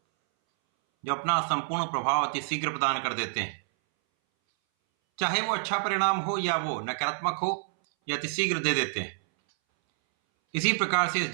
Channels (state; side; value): silent; left; 59 dB below the other